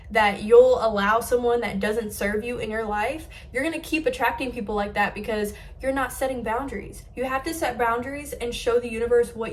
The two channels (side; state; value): both; identical; correlation 1.00